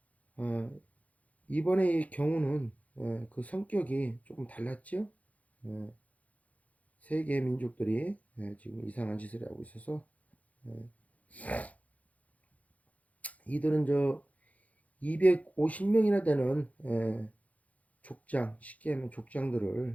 이번에 이 경우는 그 성격이 조금 달랐죠. 세계 민족들이 지금 이상한 짓을 하고 있어서 이들은 250명이나 되는 족장, 쉽게 하면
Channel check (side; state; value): right; late; 0.070 ms